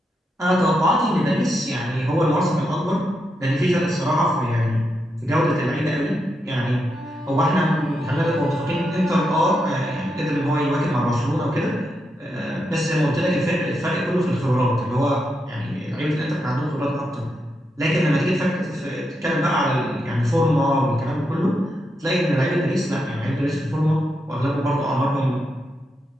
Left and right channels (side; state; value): both; normal; correlation 0.84